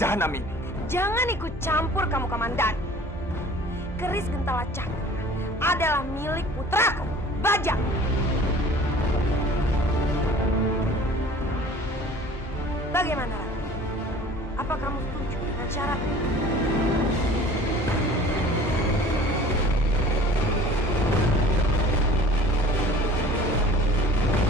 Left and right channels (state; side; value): normal; both; correlation 0.46